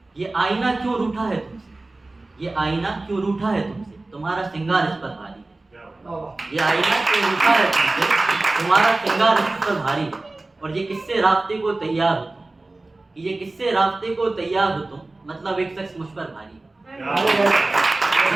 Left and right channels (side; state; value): left; quieter; 3.1 dB